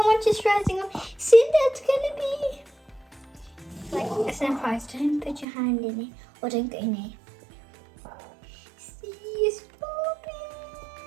much it's rising up? See, that's gonna be like a surprise. Don't put your hand in it or don't go in it. See, it's popping.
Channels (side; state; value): left; drops out; at 5.5 s